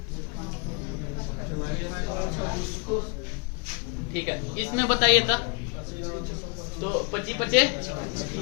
ठीक है, इसमें बताइए था तो 25 बचे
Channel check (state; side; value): quieter; right; 32.4 dB